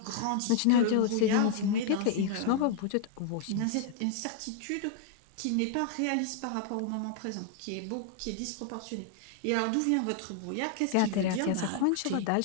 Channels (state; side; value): different; both; correlation 0.00